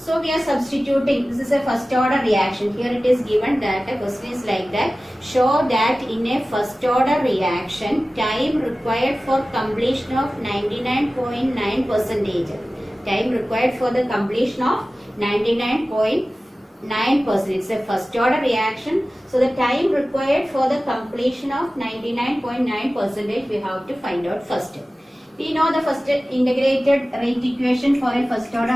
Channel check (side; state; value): both; normal; correlation 0.96